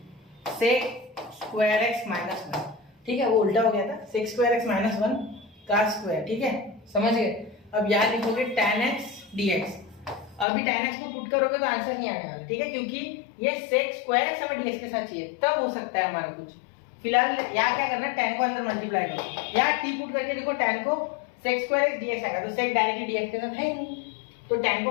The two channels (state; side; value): drops out; right; at 10.5 s